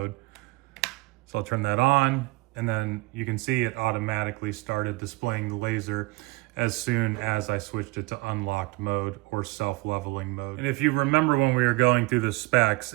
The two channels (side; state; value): left; quieter; 23.6 dB